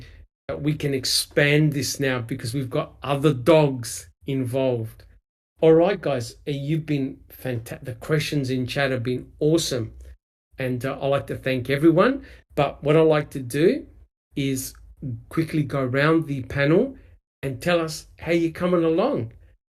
that we can expand this now because we've got other dogs involved. All right, guys, you've been fantastic. The questions in chat have been awesome. And I'd like to thank everyone. But what I'd like to do is quickly go around the panel and tell us how you're coming along.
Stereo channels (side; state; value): both; identical; correlation 1.00